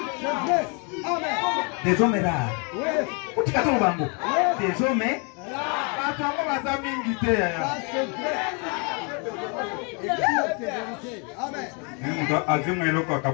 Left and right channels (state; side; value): quieter; right; 34.8 dB